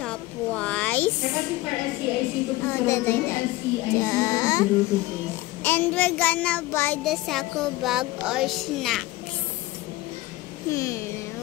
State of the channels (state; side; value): quieter; right; 18.8 dB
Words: Yeah. And we're gonna buy the sako bag or snacks.